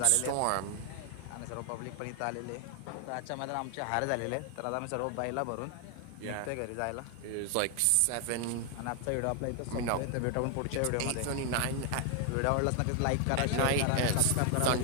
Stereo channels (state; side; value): different; both; correlation 0.00